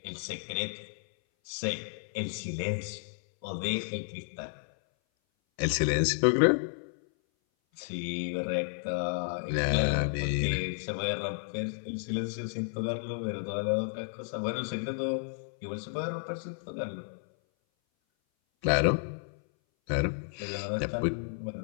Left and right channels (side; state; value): right; silent; 57 dB below the other